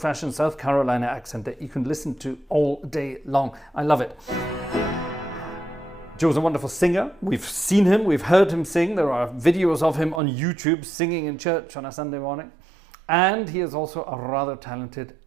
South Carolina accent that you can listen to all day long. I love it. Joe's a wonderful singer. We've seen him, we've heard him sing. There are videos of him on YouTube singing in church on a Sunday morning. And he is also a rather talented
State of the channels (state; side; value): drops out; left; at 10.2 s